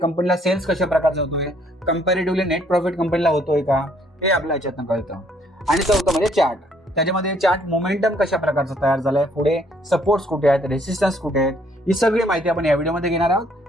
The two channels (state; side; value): normal; both; correlation 0.65